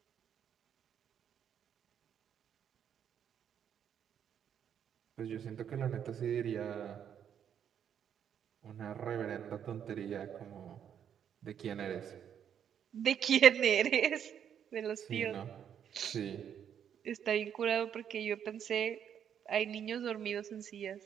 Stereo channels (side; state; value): left; quieter; 8.8 dB